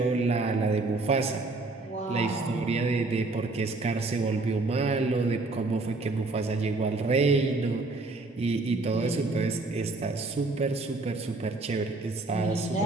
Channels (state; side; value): quieter; left; 3.3 dB